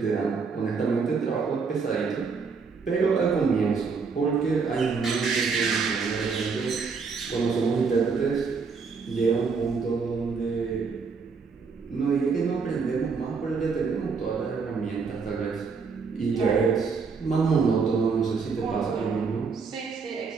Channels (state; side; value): quieter; left; 5.1 dB